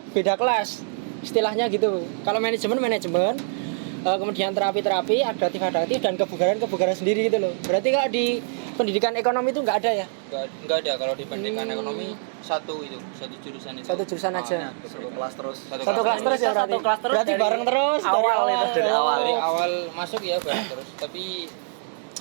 beda kelas istilahnya gitu. Kalau manajemen, kemudian terapi, adaptif dan kebugaran sendiri gitu loh. Berarti kalau di pendidikan ekonomi itu nggak ada ya? Nggak ada. Kalau di pendidikan ekonomi satu jurusan itu. Satu jurusan aja. Satu kelas terus. Satu kelas terus ya berarti. Satu kelas terus Berarti dari bareng terus awal dari itu. Dari awal masuk ya bareng terus. Tapi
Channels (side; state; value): left; silent; digital silence